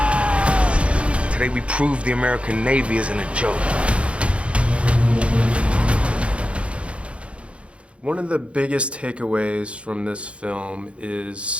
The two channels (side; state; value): left; late; 0.060 ms